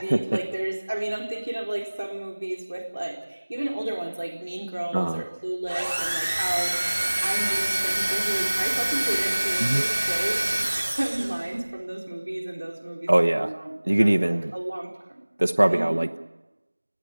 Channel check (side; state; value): both; inverted; correlation -1.00